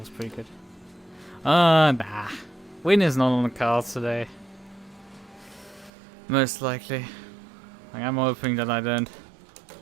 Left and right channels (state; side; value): drops out; left; at 5.9 s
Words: pretty good. Nah. Win is not on the cards today. Most likely. Like, I'm hoping that I don't